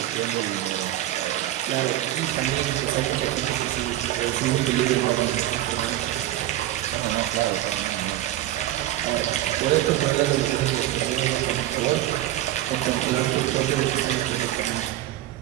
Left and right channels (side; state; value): left; quieter; 13.9 dB